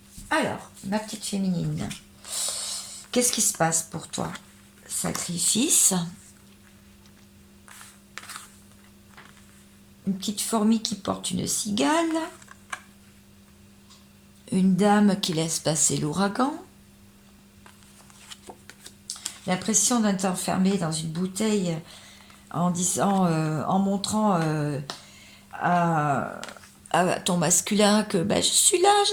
Alors, ma petite féminine, qu'est-ce qui se passe pour toi? Sacrifice. Une petite fourmi qui porte une cigale. Une dame qui laisse passer l'ouragan. L'impression d'être enfermée dans une bouteille en disant, en montrant à ton masculin que ben, je suis là,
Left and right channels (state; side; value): identical; both; correlation 1.00